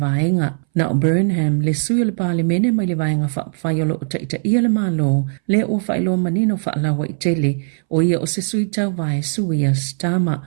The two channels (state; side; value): silent; left; 65 dB below the other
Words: Na o Burnham le sui o le pale mene mai le vaenga whapawhaia lo o taita ia le malo le o whailo manino whaalawa I tele o ia o se sui tau vae sui a Stama